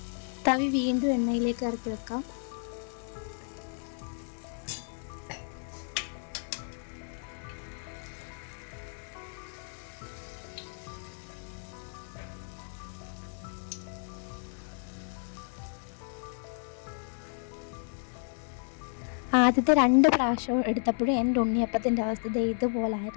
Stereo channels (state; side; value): silent; right; digital silence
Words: തവി വീണ്ടും എണ്ണയിലേക്ക് ഇറക്കി വെക്കാം. ആദ്യത്തെ 2 പ്രാവശ്യം എടുത്തപ്പോഴും എൻ്റെ ഉണ്ണിയപ്പത്തിൻ്റെ അവസ്ഥ